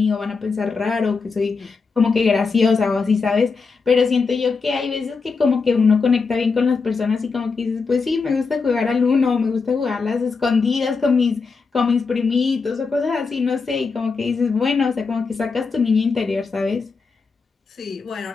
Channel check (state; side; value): quieter; right; 4.7 dB